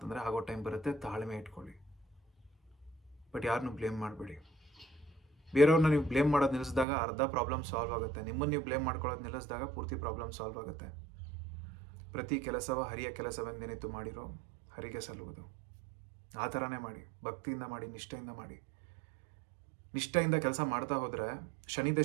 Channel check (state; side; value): drops out; left; at 6.9 s